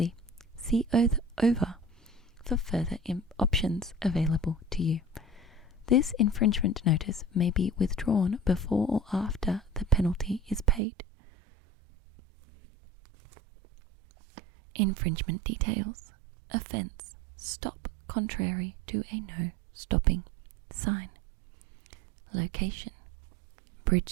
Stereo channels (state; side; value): drops out; left; at 10.8 s